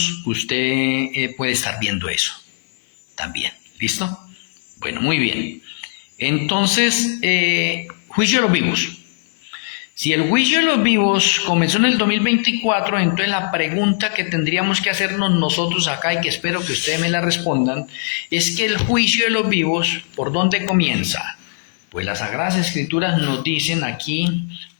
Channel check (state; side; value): silent; right; 66 dB below the other